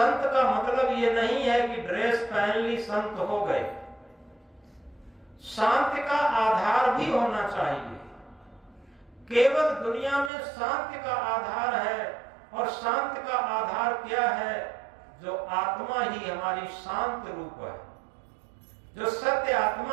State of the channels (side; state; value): left; drops out; at 10.3 s